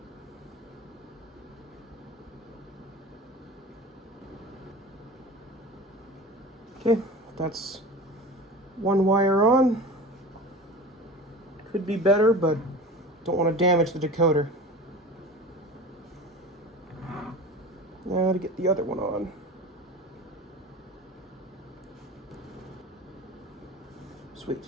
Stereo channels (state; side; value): normal; both; correlation 0.35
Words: Okay, that's one wire on. Could be better, but don't want to damage the decoder. Now to get the other one on.